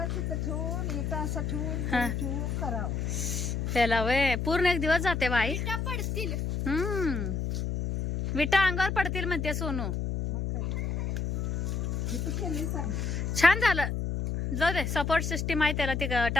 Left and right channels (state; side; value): noise; left; hum, 1 dB below the sound